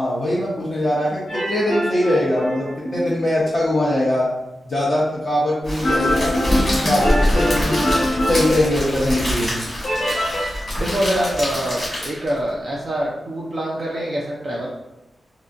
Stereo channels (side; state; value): both; normal; correlation 0.91